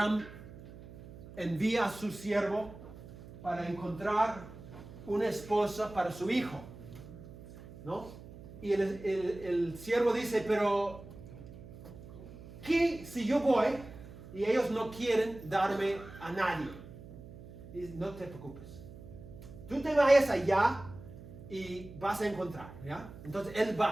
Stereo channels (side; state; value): right; noise; hum, 16 dB below the sound